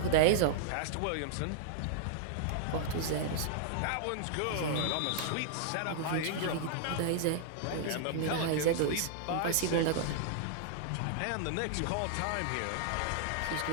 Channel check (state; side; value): different; both; correlation -0.01